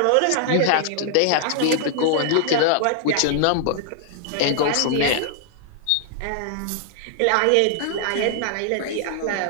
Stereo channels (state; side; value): different; both; correlation 0.00